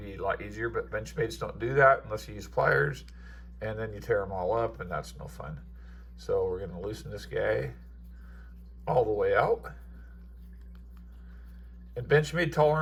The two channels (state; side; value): identical; both; correlation 1.00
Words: a lot easier, but Benchmades don't do that unless you use pliers, and then you tear them all up, and that's no fun. So we're going to loosen this guy all the way out. And Benchmade